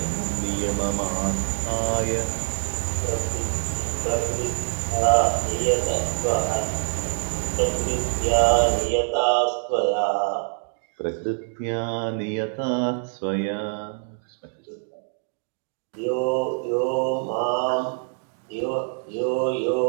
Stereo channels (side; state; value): left; silent; digital silence